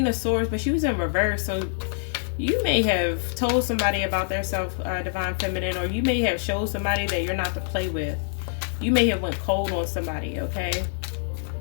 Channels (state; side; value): silent; right; 58 dB below the other